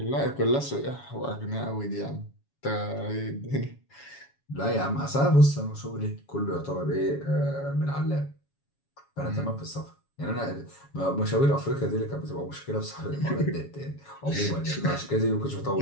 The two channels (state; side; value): late; right; 7.2 ms